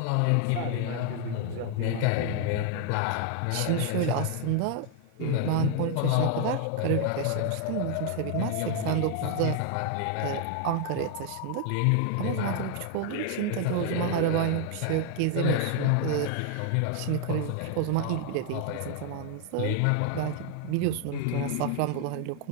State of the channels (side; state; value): both; different; correlation 0.00